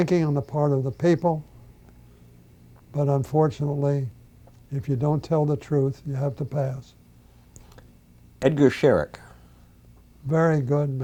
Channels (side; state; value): both; identical; correlation 1.00